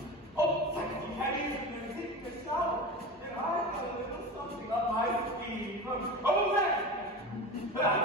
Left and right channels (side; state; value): both; normal; correlation 0.28